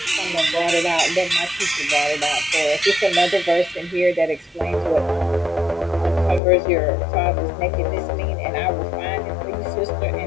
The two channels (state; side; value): drops out; right; at 6.4 s